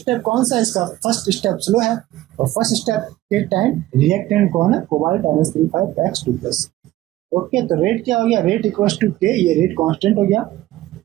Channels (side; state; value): left; quieter; 15.6 dB